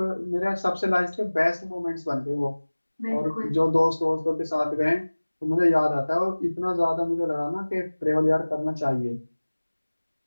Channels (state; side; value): inverted; both; correlation -1.00